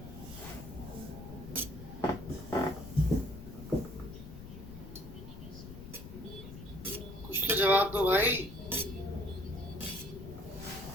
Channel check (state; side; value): noise; left; rumble, 13 dB below the sound